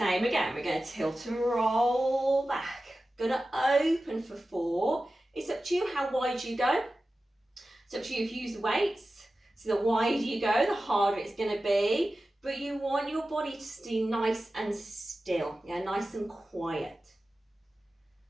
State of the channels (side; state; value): both; normal; correlation 0.94